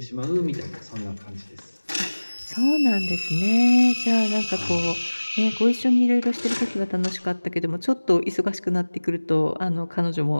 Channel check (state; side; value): inverted; both; correlation -1.00